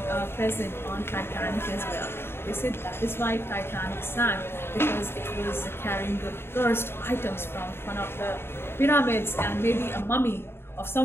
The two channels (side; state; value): right; late; 0.11 ms